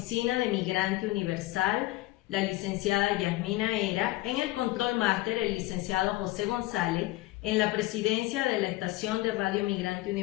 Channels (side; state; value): right; quieter; 18.4 dB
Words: de Migrante Universal, la licenciada Yasmina Era, en el Control Máster el licenciado José González, en la presidencia de la estación de Radio Migrante